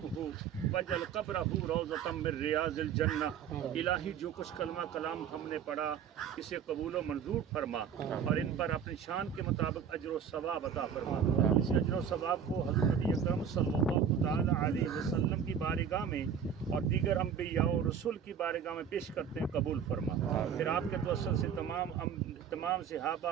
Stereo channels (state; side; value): quieter; left; 7.7 dB